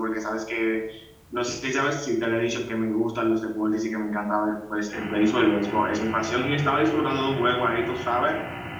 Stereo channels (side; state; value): both; identical; correlation 1.00